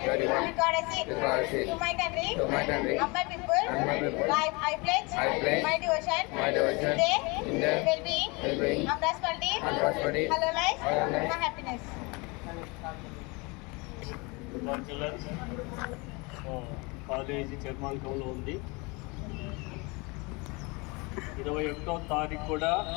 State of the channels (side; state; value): right; quieter; 27.6 dB